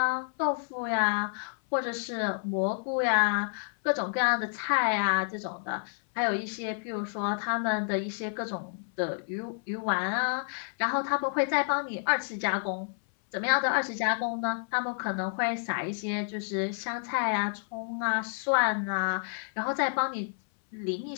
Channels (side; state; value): right; silent; 58 dB below the other